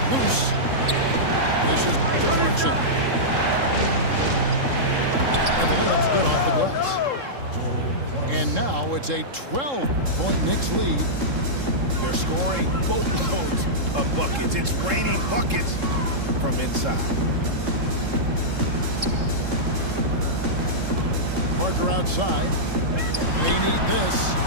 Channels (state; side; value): late; left; 3.7 ms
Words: loose. This is Clarkson. And the layup's good off the glass. And now it's a 12-point Knicks lead. They're scoring boatloads of buckets. It's raining buckets from inside. Parker outside. They need this.